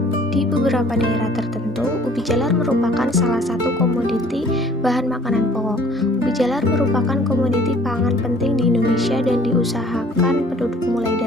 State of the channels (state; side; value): normal; both; correlation 0.54